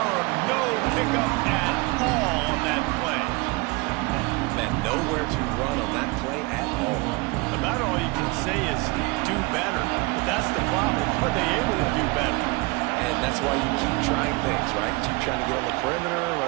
No pickup at all on that play. Man, nowhere to run on that play at all. About all you can say is do better. That's the problem. Are they able to do better? And that's why you keep trying things, right? Keep trying to get on the perimeter,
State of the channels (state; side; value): quieter; left; 26.0 dB